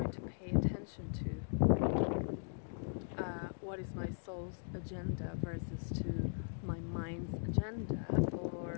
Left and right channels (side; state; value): right; silent; digital silence